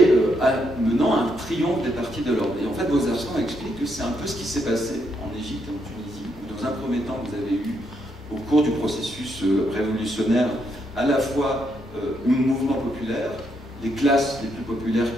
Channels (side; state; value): both; normal; correlation 0.77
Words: menant un triomphe des partis de l'ordre. Et en fait, Bouzarslan explique que c'est un peu ce qui s'est passé en Égypte et en Tunisie, où dans un premier temps, vous avez eu, au cours du processus révolutionnaire, à la fois un mouvement populaire, les classes les plus populaires